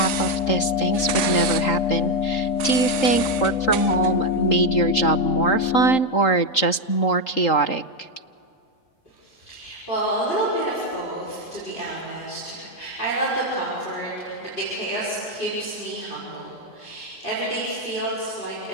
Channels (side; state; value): right; late; 3.8 ms